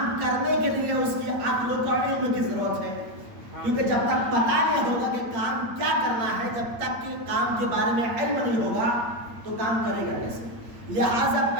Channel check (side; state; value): left; late; 8.7 ms